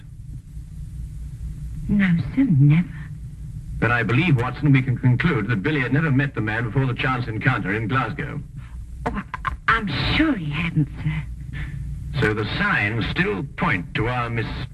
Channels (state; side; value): identical; both; correlation 1.00